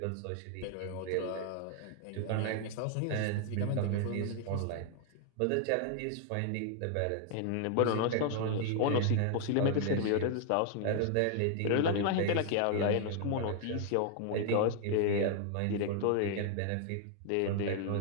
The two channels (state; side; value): different; both; correlation 0.00